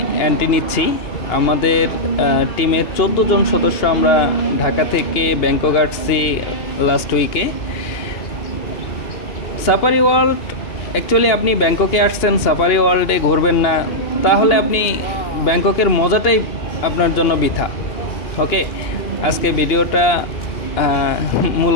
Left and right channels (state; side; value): late; right; 2.8 ms